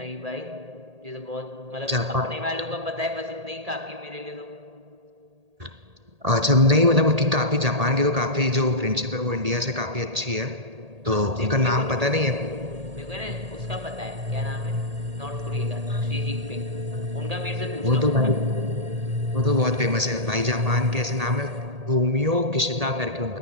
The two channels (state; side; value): late; left; 1.8 ms